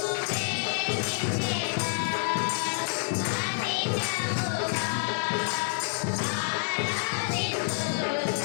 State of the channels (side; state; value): right; silent; 59 dB below the other